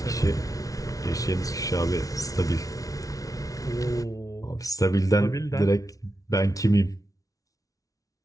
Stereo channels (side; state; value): right; late; 0.17 ms